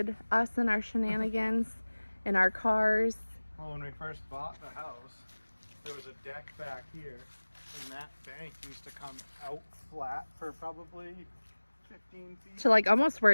us and our shenanigans and our cars. Well, when we first bought the house, there was a deck back here, and that bank used to come out flat for probably 15 feet. To like almost where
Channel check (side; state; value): both; inverted; correlation -1.00